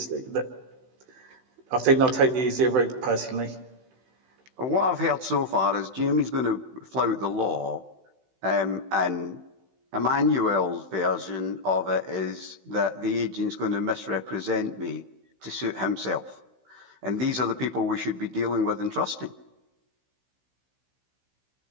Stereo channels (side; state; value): left; late; 16 ms